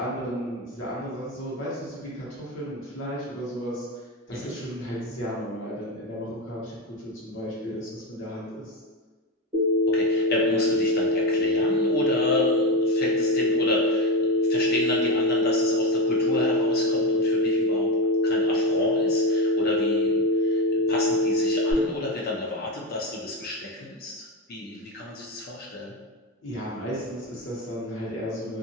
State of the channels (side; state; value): both; normal; correlation 0.14